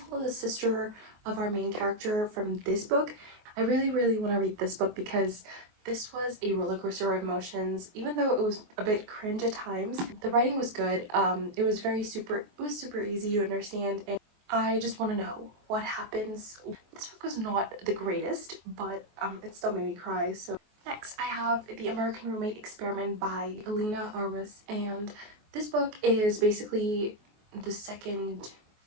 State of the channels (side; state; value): left; late; 24 ms